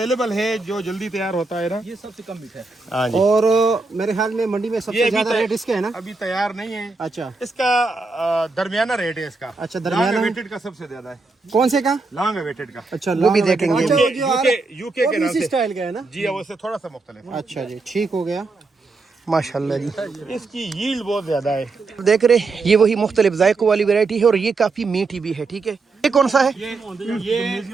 है, जो जल्दी तैयार होता है ना, ये सबसे कम मीठा है। हाँ जी। और मेरे ख्याल में मंडी में सबसे ज्यादा रेट इसके है ना? अभी तैयार नहीं है। अच्छा, इसका दरमियाना रेट है इसका। अच्छा, दरमियाना। लॉन्ग अवेटेड का सबसे ज्यादा है। कौन से का? लॉन्ग अवेटेड का। अच्छा, वो भी देखेंगे। यूके के नाम से स्टाइल का है ना? जी, वो से थोड़ा सा मुख्तलिफ है। अच्छा जी, ठीक हो गया। माशाल्लाह जी, इसकी यील्ड बहुत ज्यादा है। देख रहे, ये वही मुख्तलिफ जायकों वाली वैरायटी है और ये काफी मीठी भी है। ठीक है, ये कौन सा है? ये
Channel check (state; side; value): quieter; left; 3.8 dB